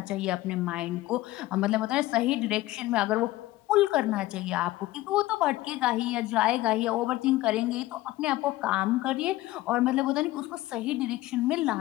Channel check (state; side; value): quieter; right; 17.1 dB